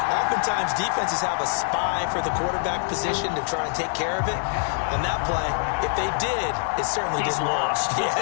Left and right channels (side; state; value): right; silent; digital silence